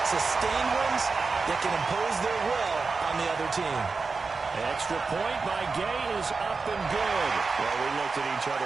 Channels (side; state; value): left; quieter; 4.4 dB